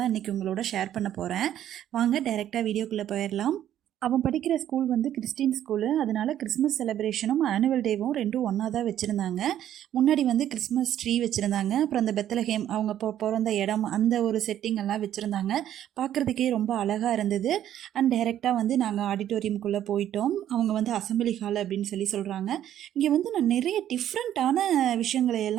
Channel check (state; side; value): quieter; left; 11.3 dB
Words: இன்றைக்கி உங்களோட ஷேர் பண்ண போகிறேன். வாங்க டைரெக்டாக வீடியோக்குள்ளே போயிடலாம். அவன் படிக்கிற ஸ்கூல் வந்து கிறிஸ்டின் ஸ்கூலு. அதனால் கிறிஸ்மஸ் செலிப்ரேஷனும் ஆனுவல் டேவும் ரெண்டும் ஒன்றா தான் வச்சுருந்தாங்க. முன்னாடி வந்து கிறிஸ்மஸ் ட்ரீ வச்சுருந்தாங்க. அப்புறம் அந்த பெத்தலஹேம் அவங்க பிறந்த இடம் அந்த ஒரு செட்டிங் எல்லாம் வச்சுருந்தாங்க. பார்க்குறதுக்கே ரொம்ப அழகாக இருந்தது. அண்ட் டைரெக்டாக வந்து நாங்கள் ஆடிட்டோரியம்குள்ளே போயிட்டோம். அவங்க வந்து அசம்பிளி ஹால் அப்படின்னு சொல்கிறாங்க. இங்கே வந்து நான் நிறைய டிஃப்ரெண்ட்டான விஷயங்களை